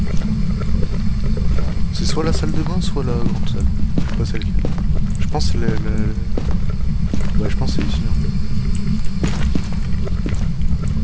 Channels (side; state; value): both; identical; correlation 1.00